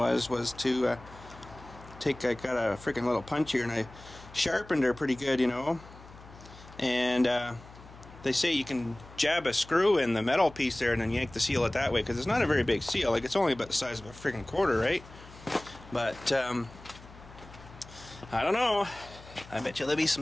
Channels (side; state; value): left; noise; hum, 19 dB below the sound